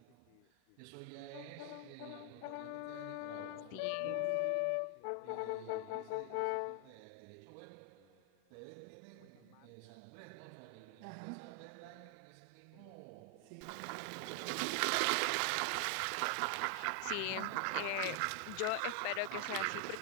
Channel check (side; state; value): both; different; correlation 0.00